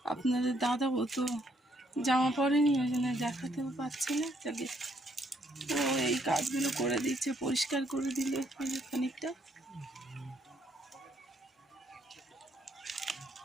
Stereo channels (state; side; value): normal; both; correlation 0.70